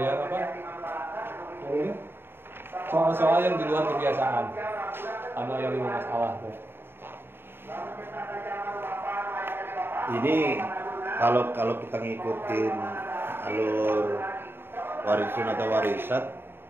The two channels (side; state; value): left; late; 0.11 ms